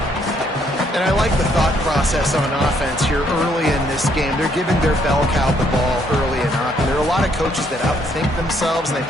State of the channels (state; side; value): normal; both; correlation 0.69